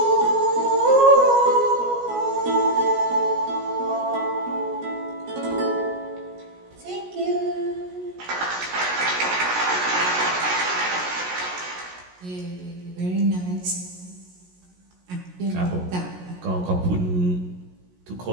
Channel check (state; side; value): late; left; 17 ms